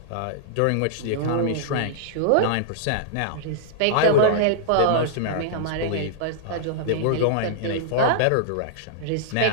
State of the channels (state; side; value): different; both; correlation -0.02